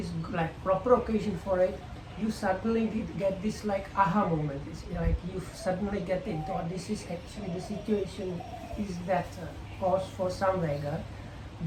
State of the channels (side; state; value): both; identical; correlation 1.00